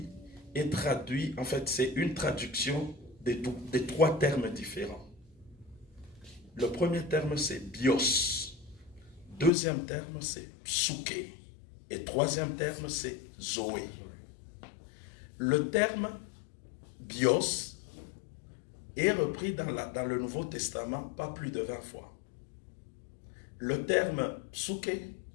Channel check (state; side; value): drops out; right; at 9.5 s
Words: est traduit, en fait, c'est une traduction des 3 termes différents. Le premier terme, c'est bios. Deuxième terme, c'est psuké. Et troisième terme, c'est zoé. Le terme bios est repris dans le Nouveau Testament pas plus de 20 fois. Le terme psuké